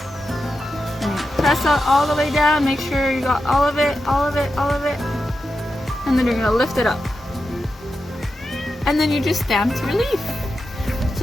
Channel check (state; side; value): normal; both; correlation 0.89